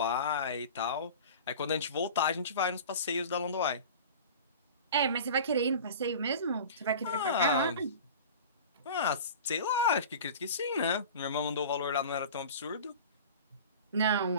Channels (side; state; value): both; inverted; correlation -0.37